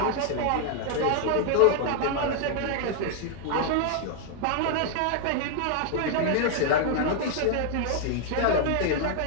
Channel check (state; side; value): different; both; correlation 0.00